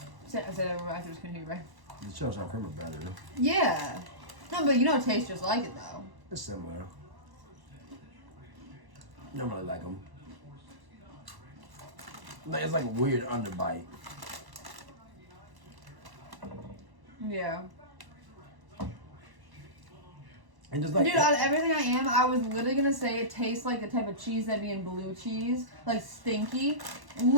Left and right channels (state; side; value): late; left; 1.1 ms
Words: I said everybody after this continue, right? The cheddar sour cream are better. Yeah. No, but you know it tastes just like it though. It's similar. I don't really like them. It's like a weird underbite. Yeah. And just like dude, out of everything I am, I was literally gonna say it tastes like the type of cheese that'd be in blue cheese, like stinky.